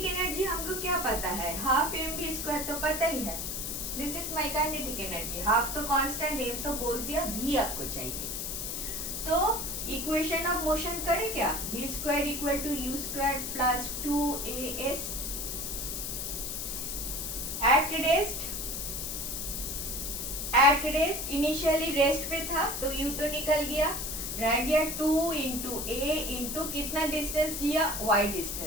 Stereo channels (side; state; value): left; noise; hiss, 4 dB below the sound